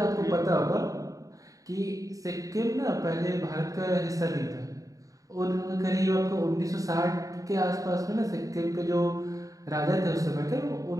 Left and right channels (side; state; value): left; late; 0.16 ms